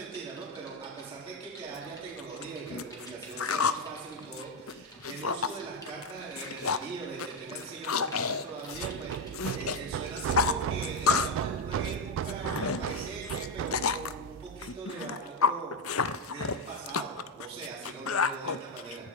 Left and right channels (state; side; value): normal; both; correlation 0.08